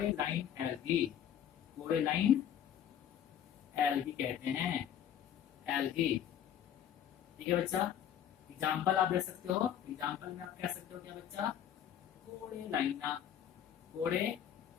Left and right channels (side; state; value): right; quieter; 9.7 dB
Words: एल्गी कहते हैं, एल्गी। ठीक है बच्चा, एग्जाम्पल आप दे सकते हो, एग्जाम्पल में आप कह सकते हो क्या बच्चा, कोरेलाइना।